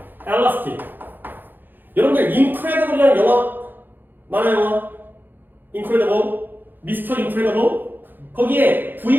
elastic. 여러분들 incredible이라는 영화 만화 영화 incredible, 미스터 인크레더블 거기에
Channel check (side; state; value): left; late; 0.091 ms